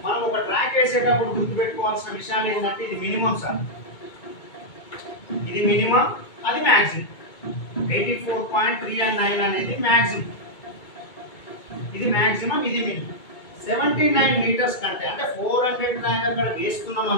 మనం ఒక ట్రాక్ వేసేటప్పుడు గుర్తుపెట్టుకోవాల్సిన విషయాలు ఏంటంటే ఇది మినిమం సార్, ఇది మినిమం, అది మ్యాక్సిమం. 84.39 అనేది మ్యాక్సిమం, ఇది మ్యాక్సిమం, ఇది మినిమం. 79 మీటర్స్ కంటే అంటే 400 ట్రాక్ అక్కడ వేస్తున్నాం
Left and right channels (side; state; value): right; late; 2.2 ms